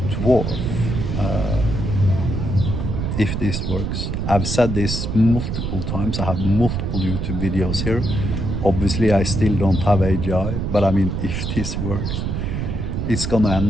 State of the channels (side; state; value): right; noise; rumble, 2 dB below the sound